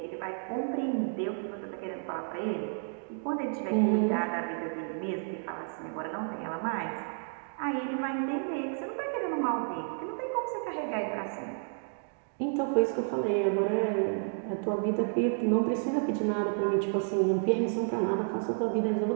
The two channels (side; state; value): left; silent; 56 dB below the other